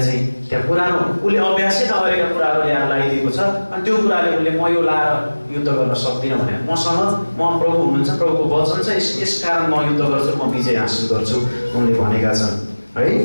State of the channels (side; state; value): both; inverted; correlation -1.00